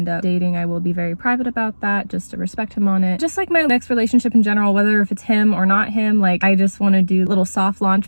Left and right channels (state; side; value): inverted; both; correlation -1.00